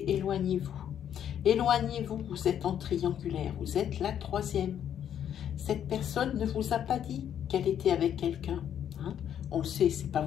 éloignez-vous. Éloignez-vous, vous êtes en triangulaire, vous êtes la troisième. Cette personne ne vous a pas dit qu'elle était avec quelqu'un. Hein? On le sait, c'est pas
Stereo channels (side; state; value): right; quieter; 9.6 dB